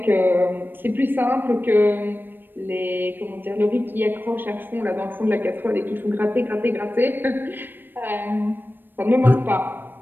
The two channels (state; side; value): late; left; 0.094 ms